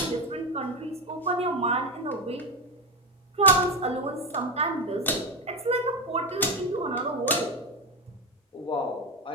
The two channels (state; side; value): normal; both; correlation 0.15